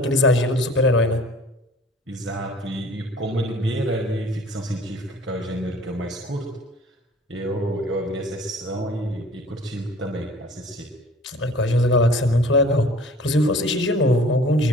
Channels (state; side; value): normal; both; correlation 0.49